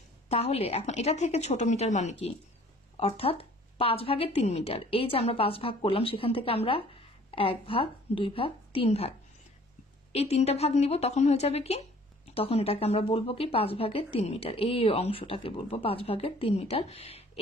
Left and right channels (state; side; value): normal; both; correlation 0.53